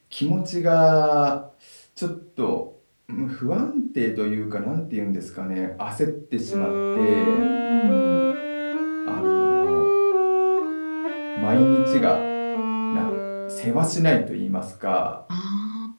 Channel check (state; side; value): inverted; both; correlation -1.00